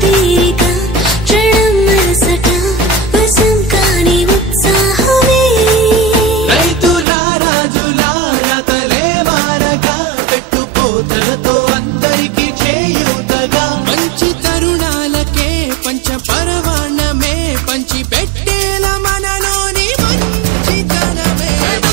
తీరిక క్షణం మనసట వశం కాని ఉత్సాహమే రైతులా రాజులా రతలే మారగా పెట్టుపోతలతో అందరికి చేయూతగా మంచి తరుణాలకే పంచ పరవాణమే పంచి పెట్టేల మనలోని మంచితనమే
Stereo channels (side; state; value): left; drops out; at 7.1 s